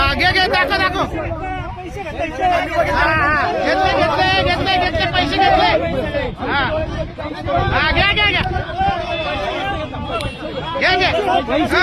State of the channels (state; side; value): identical; both; correlation 1.00